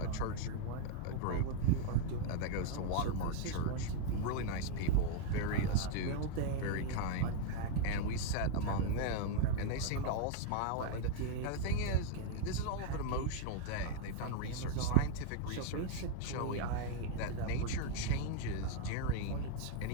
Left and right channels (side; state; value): both; different; correlation 0.00